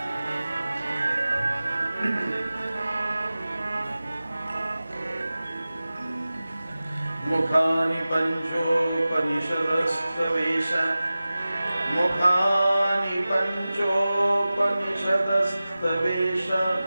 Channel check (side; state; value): both; inverted; correlation -0.96